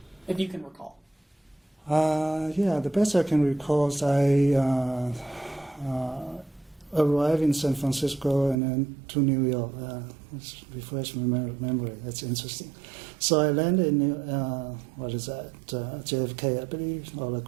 if you can recall? Yeah, the best I can recall is I arrived in San Francisco and then to New York. Let's refresh my memory. That's interesting. So I landed in JFK, I believe, or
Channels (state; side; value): drops out; left; at 8.6 s